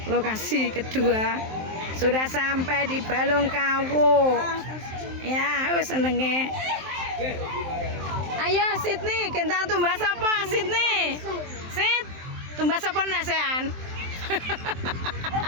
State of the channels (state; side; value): late; left; 23 ms